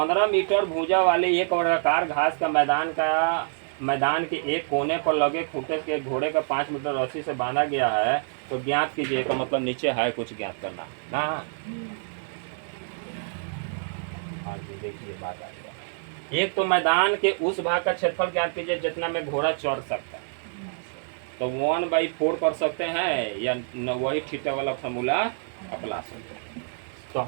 मीटर भुजा वाले एक वर्गाकार घास का मैदान के एक कोने पर लगे खूंटे के घोड़े का 5 मीटर रस्सी से बांधा गया है, तो ज्ञात कीजिए का मतलब नीचे है कुछ ज्ञात करना ना। हाँ जी, देखिए बात आ गया। एक तो मैदान के उस भाग का क्षेत्रफल ज्ञात कीजिए जितना में घोड़ा चढ़ सकता है, तो 1/4 कर सकते हैं या वही थीटा वाला फॉर्मूला अपना सकते हैं। तो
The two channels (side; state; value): left; silent; 60 dB below the other